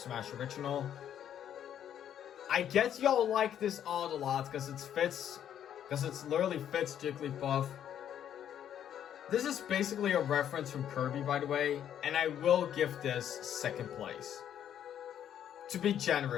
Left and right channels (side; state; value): right; quieter; 10.0 dB